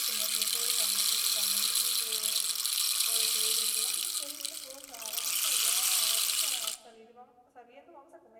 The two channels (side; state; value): both; identical; correlation 1.00